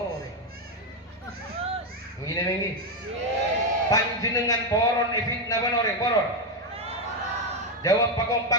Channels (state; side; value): normal; both; correlation 0.06